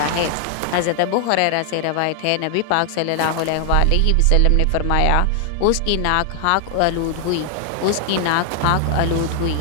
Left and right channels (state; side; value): different; both; correlation 0.00